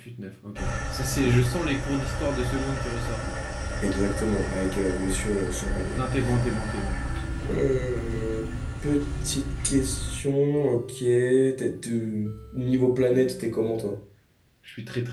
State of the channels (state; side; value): identical; both; correlation 1.00